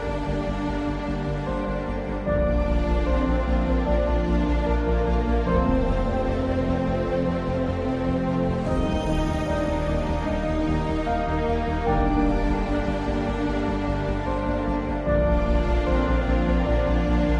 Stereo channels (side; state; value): both; identical; correlation 1.00